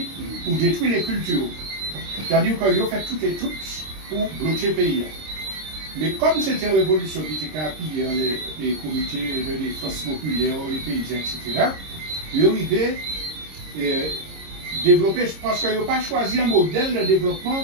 pour détruire les cultures. C'est-à-dire qu'ils ont fait tout et tout pour bloquer le pays. Mais comme c'était une révolution qui était appuyée dans les comités de défense populaire, les paysans, etc., ils ont arrivé développer, parce qu'ils n'ont pas choisi un modèle de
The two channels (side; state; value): left; late; 26 ms